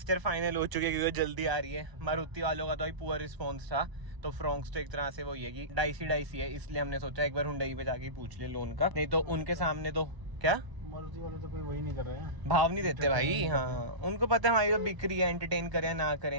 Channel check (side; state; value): left; late; 1.0 ms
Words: फाइनल हो चुके, क्योंकि जल्दी आ रही है। मारुति वालों का तो पुअर रिस्पॉन्स था, तो फ्रॉन्क्स तो एक तरह से वही है कि डाइसी है, इसलिए हमने सोचा एक बार हुंडई पे जाके पूछ ले लोन का। नहीं तो उनके सामने तो क्या मारुति वाले तो कोई वही नहीं कर रहे हैं, भाव नहीं देते भाई। हाँ उनको पता है हमारी तो बिक रही है, एंटरटेन करें ना